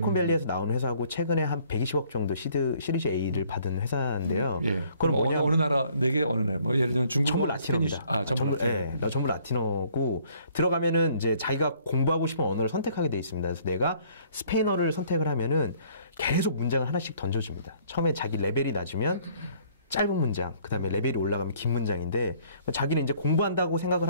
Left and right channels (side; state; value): both; inverted; correlation -0.60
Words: 나온 회사고 최근에 한 120억 정도 시리즈 A를 받은 회사인데요. 예. 그럼 어느 나라 4개 어느 나라? 뭐 예를 들면 중국어, 전부 라틴어입니다. 전부 라틴어. 네, 전부 라틴어고 들어가면은 이제 자기가 공부하고 싶은 언어를 선택하게 돼 있습니다. 그래서 내가 스페인어를 선택을 하면은 계속 문장을 하나씩 던져줍니다. 처음에 자기 레벨이 낮으면 짧은 문장, 그 다음에 레벨이 올라가면 긴 문장인데, 자기는 이제 공부한다고 생각을